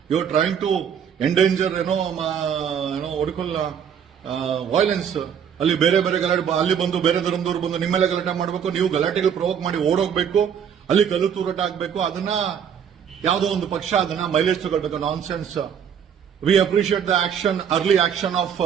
you are trying to endanger ಒಡಕಲ್ಲ ವೈಲೆನ್ಸ್. ಅಲ್ಲಿ ಬೇರೆ ಗಲಾಟೆ, ಅಲ್ಲಿ ಬಂದು ಬೇರೆ ಧರ್ಮದವ್ರು ಬಂದು ನಿಮ್ಮೆಲ್ಲ ಗಲಾಟೆ ಮಾಡಬೇಕು, ನೀವು ಗಲಾಟೆಗಳು ಪ್ರವೋಕ್ ಮಾಡಿ ಓಡೋಗ್ಬೇಕು, ಅಲ್ಲಿ ಕಲ್ಲು ತೂರಾಟ ಆಗ್ಬೇಕು. ಅದನ್ನ ಯಾವುದೋ ಒಂದು ಪಕ್ಷ ಅದನ್ನ ಮೈಲೇಜ್ ತಗೊಳ್ಬೇಕು. Nonsense. We appreciate the action, early action of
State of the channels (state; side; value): quieter; left; 8.1 dB